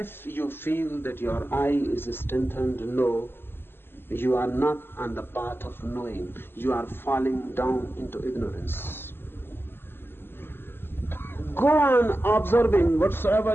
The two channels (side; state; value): right; late; 0.11 ms